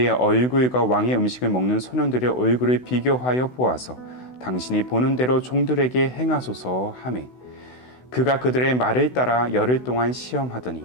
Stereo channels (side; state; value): right; late; 16 ms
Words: 얼굴과 왕의 음식을 먹는 소년들의 얼굴을 비교하여 보아서 당신이 보는 대로 종들에게 행하소서 하매 그가 그들의 말을 따라 열흘 동안 시험하더니